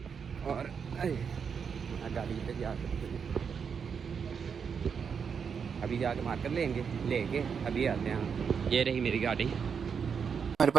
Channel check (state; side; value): quieter; left; 6.5 dB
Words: और गाड़ी पे जा अभी जाके मार्कर लेके अभी आते हैं। ये रही मेरी गाड़ी। हमारे